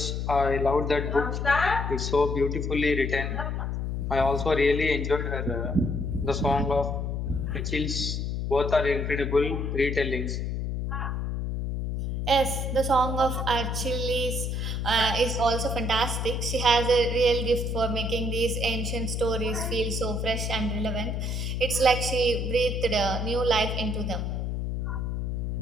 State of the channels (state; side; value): noise; left; hum, 1 dB below the sound